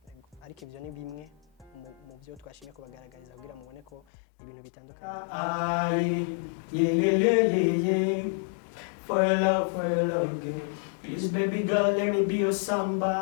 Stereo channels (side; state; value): right; drops out; at 4.0 s